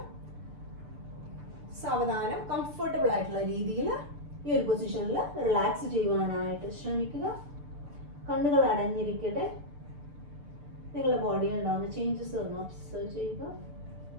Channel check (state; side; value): late; left; 6.8 ms